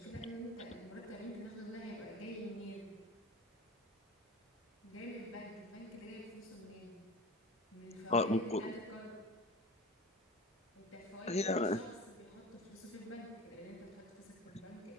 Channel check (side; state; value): both; normal; correlation 0.34